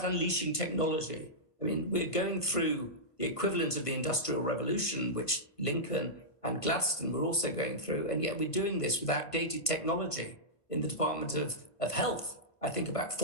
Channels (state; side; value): late; right; 1.5 ms